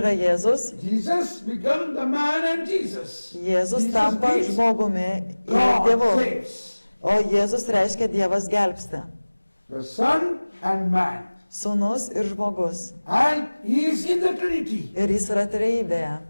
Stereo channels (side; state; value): both; inverted; correlation -1.00